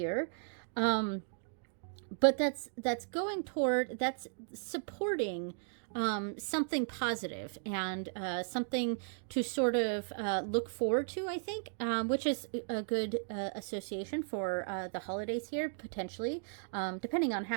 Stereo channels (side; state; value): left; silent; digital silence